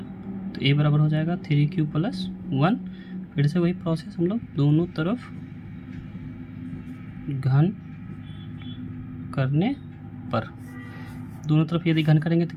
तो a बराबर हो जाएगा 3q+1। फिर से वही प्रोसेस, हम लोग दोनों तरफ घन करने पर, दोनों तरफ यदि घन करेंगे तो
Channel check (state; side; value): identical; both; correlation 1.00